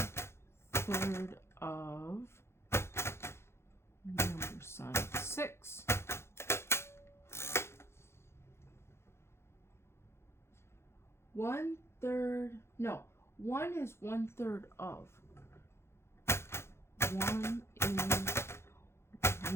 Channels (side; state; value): right; late; 0.12 ms